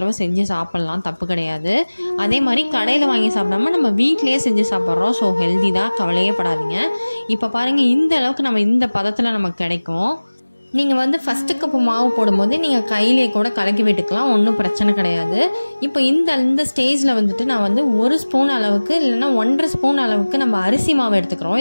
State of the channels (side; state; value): both; inverted; correlation -1.00